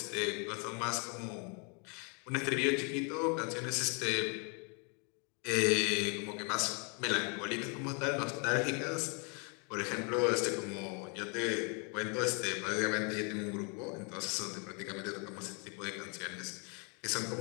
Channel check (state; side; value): quieter; right; 35.5 dB